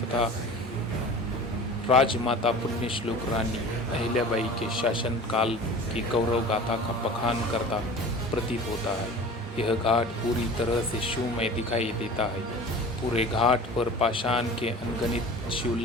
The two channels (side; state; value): both; normal; correlation 0.39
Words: राजमाता पुण्यश्लोक रानी अहिल्याबाई के शासन काल की गौरव गाथा का बखान करता प्रतीत होता है। यह घाट पूरी तरह से शिवमय दिखाई देता है। पूरे घाट पर पाषाण के अनगिनत